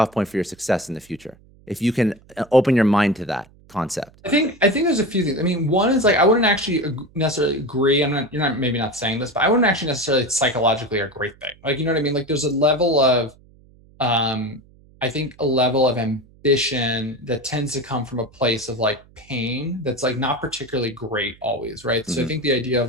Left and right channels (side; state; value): right; noise; hum, 27 dB below the sound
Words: point for your success in the future. If you can open your mind to that concept. I think there's a few things. I mean, one is like I wouldn't actually necessarily agree. You're not maybe not saying this, but I wouldn't actually necessarily psychologically a great thing. Like you know what I mean? Like there's a level of I think a level of ambition that tends to come from a place of like pain that's like not particularly great always, right? So I think the idea